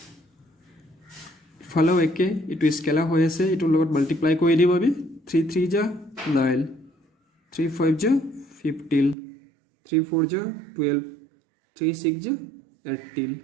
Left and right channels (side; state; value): left; drops out; at 9.2 s